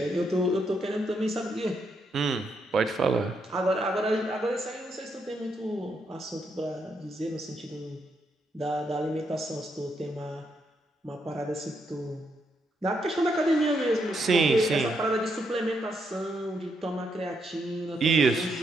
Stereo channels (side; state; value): both; normal; correlation 0.78